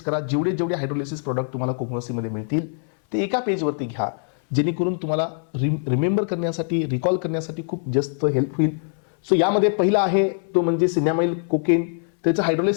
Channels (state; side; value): silent; right; 64 dB below the other